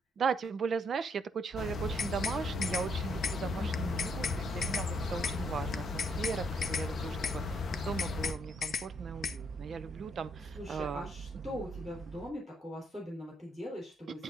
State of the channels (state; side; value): normal; both; correlation 0.72